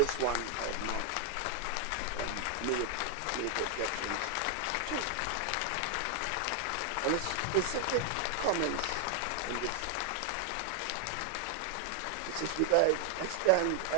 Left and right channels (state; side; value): different; both; correlation 0.00